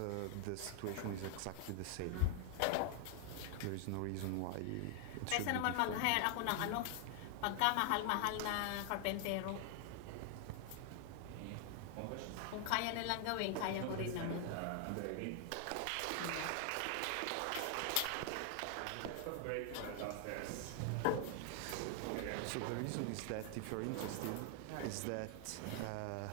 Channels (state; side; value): different; both; correlation 0.00